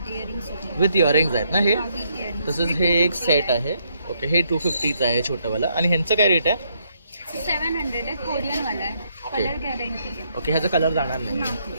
विथ इयरिंग्स आहेत ना हे. तसंच हे एक सेट आहे. ओके हे 250चं आहे छोटंवालं. आणि ह्यांचं काय रेट आहे? 700 आहे, कोरियन वाला आहे. ओके कलर गॅरंटी आहे. ओके, ह्याचा कलर जाणार नाही.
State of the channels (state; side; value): inverted; both; correlation -0.73